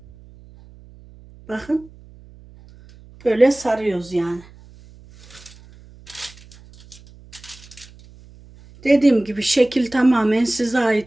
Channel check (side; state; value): right; noise; hum, 23 dB below the sound